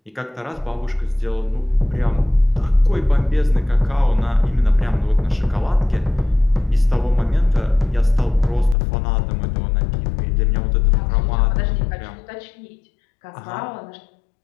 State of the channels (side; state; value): right; drops out; at 8.8 s